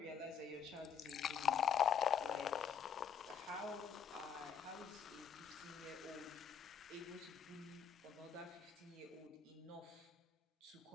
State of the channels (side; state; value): right; quieter; 7.3 dB